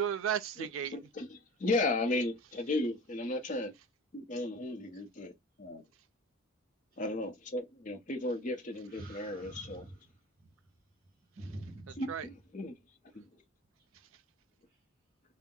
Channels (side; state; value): both; normal; correlation 0.37